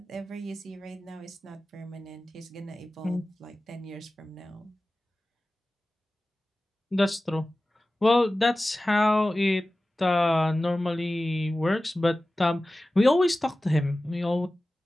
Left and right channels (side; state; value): both; normal; correlation 0.96